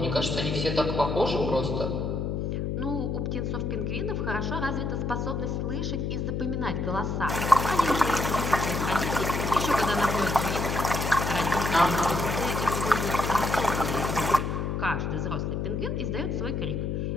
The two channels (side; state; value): left; noise; hum, 1 dB below the sound